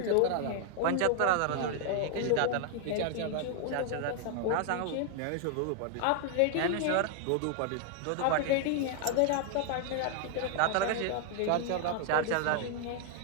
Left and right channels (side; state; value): both; different; correlation 0.00